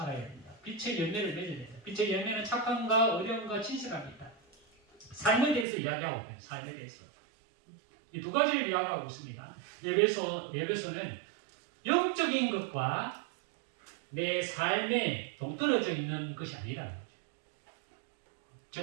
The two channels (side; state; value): left; drops out; at 5.7 s